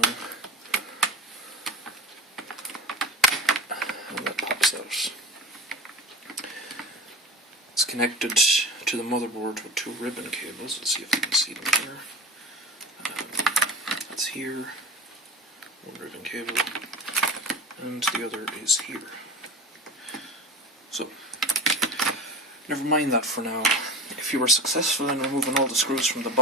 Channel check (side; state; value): both; normal; correlation 0.34